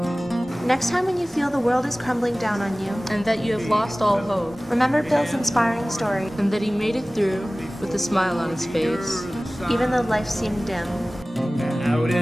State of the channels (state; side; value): normal; both; correlation 0.98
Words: Next time when you feel the world is crumbling down on you, And that you have lost all hope, remember Bill's inspiring story, and that he made it through with a smile on his face. even though life seemed dim. Out